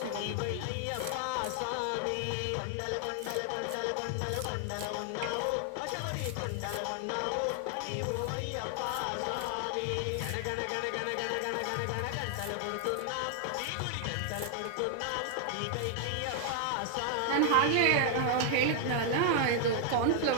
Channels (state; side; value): different; both; correlation 0.00